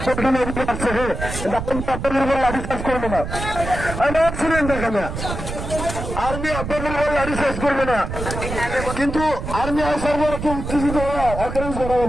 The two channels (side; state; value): right; noise; rumble, 6 dB below the sound